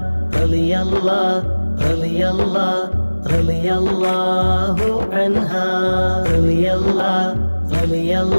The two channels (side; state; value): both; inverted; correlation -1.00